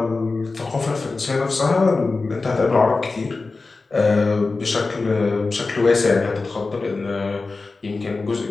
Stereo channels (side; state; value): right; quieter; 3.8 dB